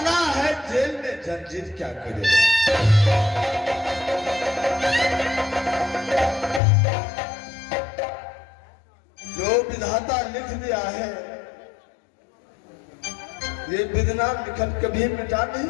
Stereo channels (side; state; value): right; drops out; at 6.6 s